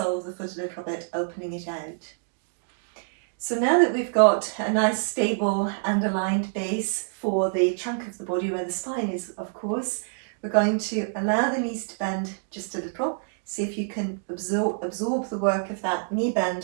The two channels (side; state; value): left; silent; digital silence